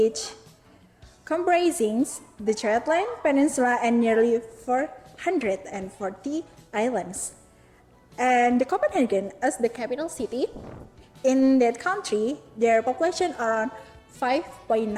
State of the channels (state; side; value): identical; both; correlation 1.00